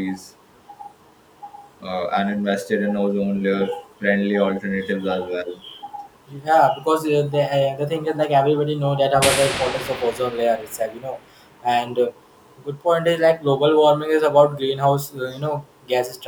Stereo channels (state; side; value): identical; both; correlation 1.00